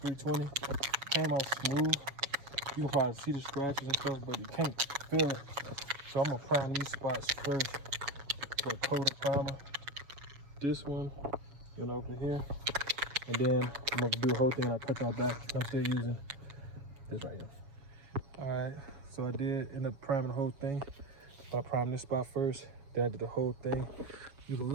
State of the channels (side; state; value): left; late; 7.0 ms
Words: 320, came out smooth. You can probably see the scratches and stuff, but you can't feel it. So I'm gonna prime these spots first with a coat of primer. This one, over here. And then I'm gonna do the whole thing and I'll cut y'all back. I'm still using this right here. All right, so I did end up priming the whole thing. I primed this spot first, then I did the whole thing. You can